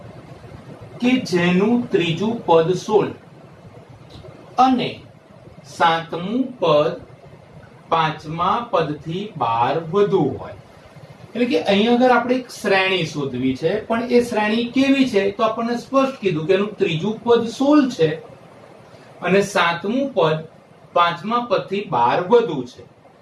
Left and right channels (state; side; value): identical; both; correlation 1.00